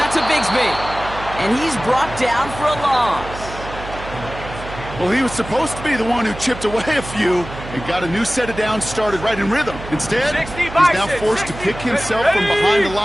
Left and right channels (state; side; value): noise; right; hum, 12 dB below the sound